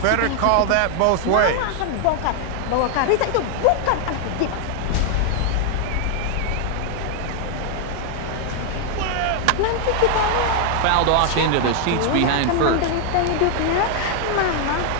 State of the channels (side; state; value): both; different; correlation 0.00